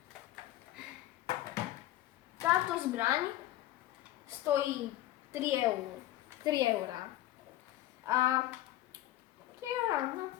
Táto zbraň stojí 3 eur. 3 eurá. A 3 eurá, no.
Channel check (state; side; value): quieter; right; 14.8 dB